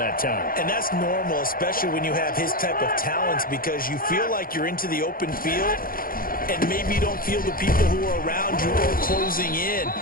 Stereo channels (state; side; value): late; right; 0.42 ms